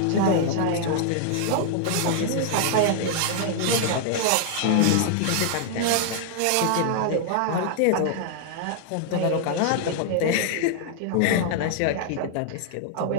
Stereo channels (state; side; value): different; both; correlation 0.00